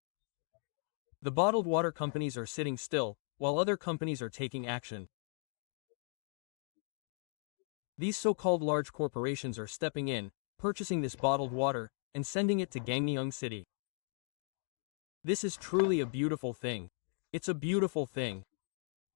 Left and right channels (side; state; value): right; silent; 53 dB below the other